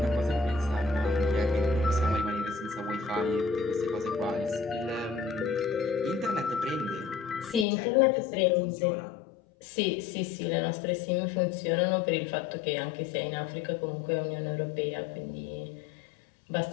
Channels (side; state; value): right; drops out; at 7.7 s